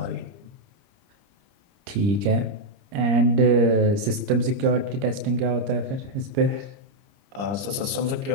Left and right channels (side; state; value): left; late; 30 ms